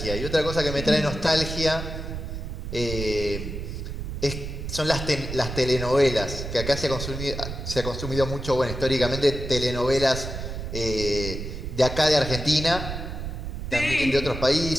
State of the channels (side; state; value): right; noise; rumble, 6 dB below the sound